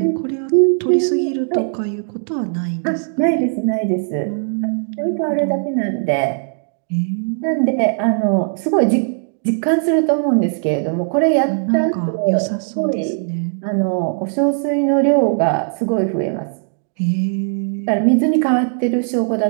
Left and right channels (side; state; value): left; silent; digital silence